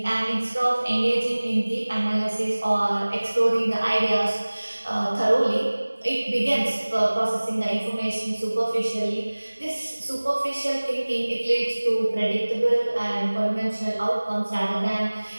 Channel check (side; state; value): both; inverted; correlation -1.00